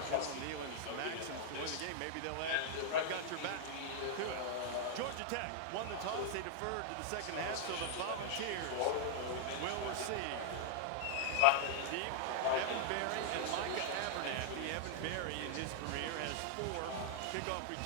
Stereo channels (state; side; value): different; both; correlation -0.01